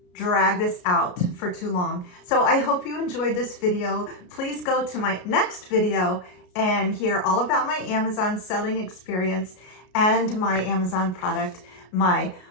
drag this out for too long. So I hope you enjoyed this video. Please go to my next video and hear all about my Amazon selling experience and my Amazon product, my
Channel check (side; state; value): right; late; 33 ms